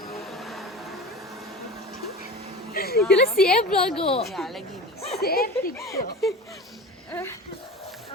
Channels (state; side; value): normal; both; correlation 0.33